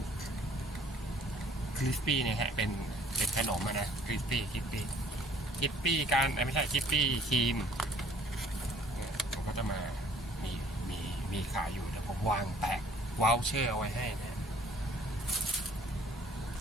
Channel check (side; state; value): both; normal; correlation 0.57